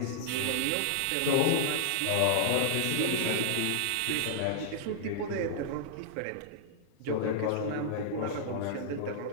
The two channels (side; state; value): both; different; correlation -0.01